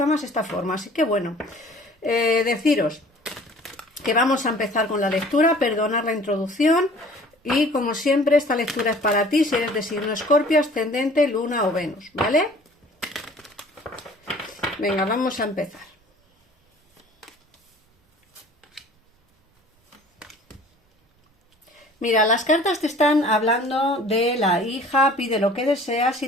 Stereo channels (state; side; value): normal; both; correlation 0.50